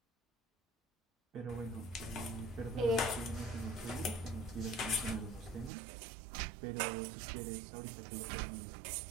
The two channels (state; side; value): drops out; left; at 5.7 s